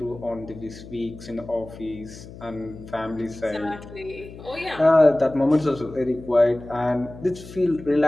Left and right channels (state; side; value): noise; left; hum, 16 dB below the sound